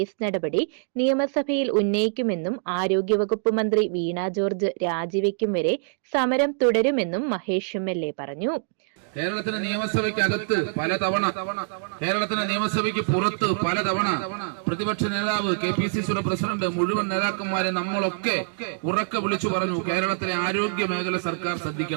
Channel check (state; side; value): silent; left; digital silence